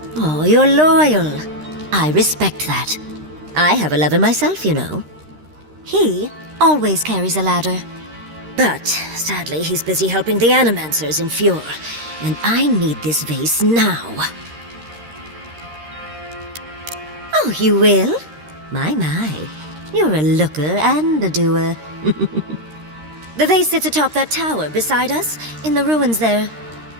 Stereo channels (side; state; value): left; late; 13 ms